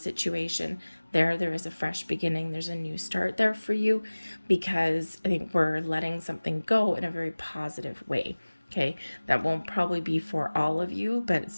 there is a fresh beginning. There's a new start there for you, because I think we're letting something go in a very positive way. Okay. That won't probably be for all of you, but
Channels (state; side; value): inverted; both; correlation -1.00